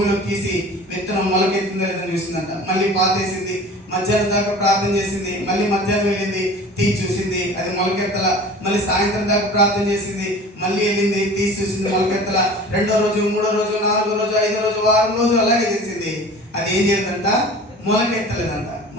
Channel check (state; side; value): normal; both; correlation 0.41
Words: తీసి విత్తనం మొలకెత్తిందో లేదని చూసిందంట. మళ్ళీ పాతేసింది. మధ్యాహ్నం దాకా ప్రార్థన చేసింది. మళ్ళీ మధ్యాహ్నం వెళ్ళింది, తీసి చూసింది, అది మొలకెత్తల. మళ్ళీ సాయంత్రం దాకా ప్రార్థన చేసింది, మళ్ళీ వెళ్ళింది, తీసి చూసింది, మొలకెత్తల. 2వ రోజు, 3వ రోజు, 4వ రోజు, 5వ రోజు, వారం రోజు అలాగే చేసింది. అది ఏం చేయదంట, మొలకెత్తలేదంట.